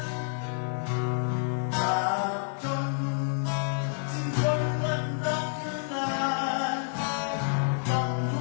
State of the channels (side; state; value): right; silent; 59 dB below the other